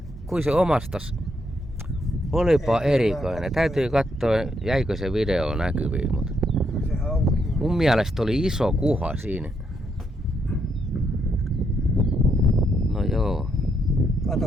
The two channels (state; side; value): normal; both; correlation 0.77